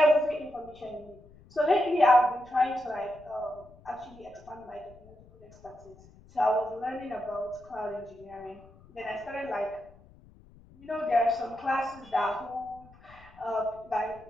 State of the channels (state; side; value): noise; left; rumble, 24 dB below the sound